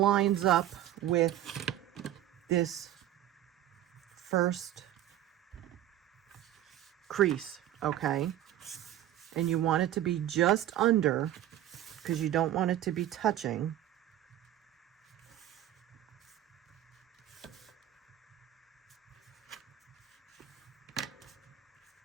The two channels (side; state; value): left; quieter; 12.5 dB